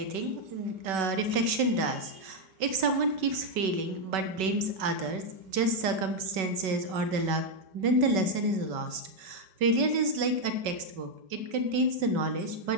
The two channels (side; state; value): left; late; 5.3 ms